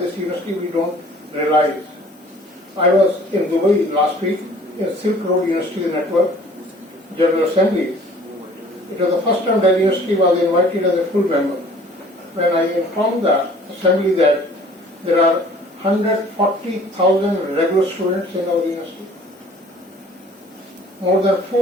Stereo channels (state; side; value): normal; both; correlation 0.52